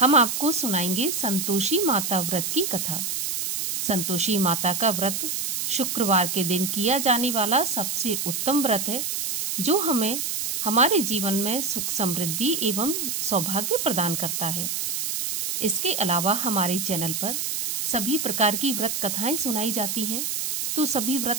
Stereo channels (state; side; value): noise; right; hiss, 2 dB below the sound